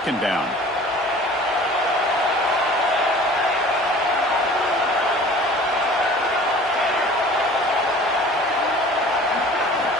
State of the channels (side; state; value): both; normal; correlation 0.46